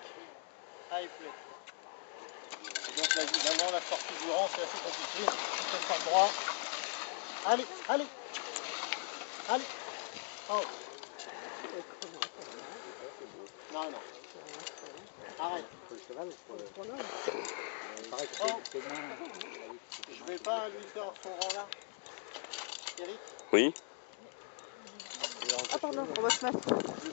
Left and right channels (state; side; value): silent; right; 51 dB below the other